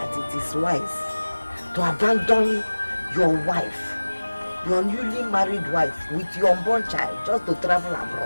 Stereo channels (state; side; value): inverted; both; correlation -1.00